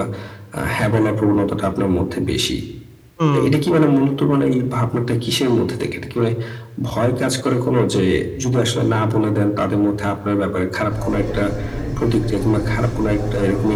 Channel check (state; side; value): identical; both; correlation 1.00